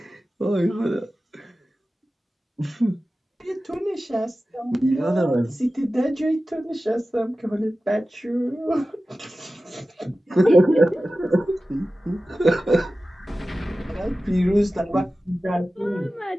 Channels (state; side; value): normal; both; correlation 0.95